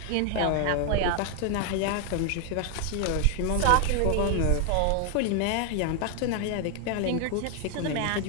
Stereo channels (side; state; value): both; different; correlation 0.00